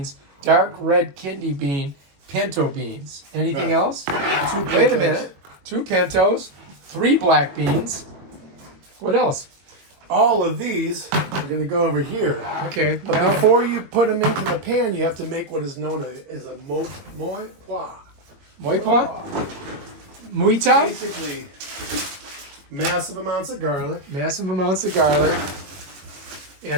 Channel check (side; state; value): left; late; 21 ms